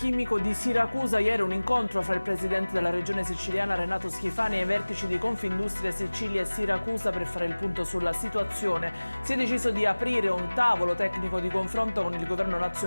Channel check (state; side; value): inverted; both; correlation -1.00